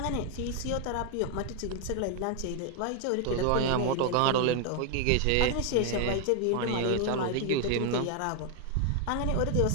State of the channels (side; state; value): both; different; correlation 0.00